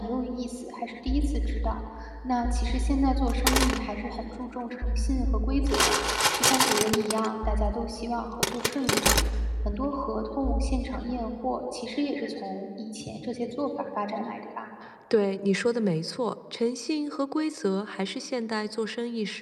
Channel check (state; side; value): identical; both; correlation 1.00